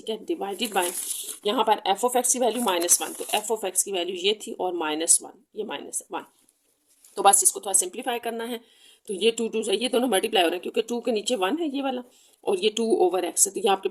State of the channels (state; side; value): identical; both; correlation 1.00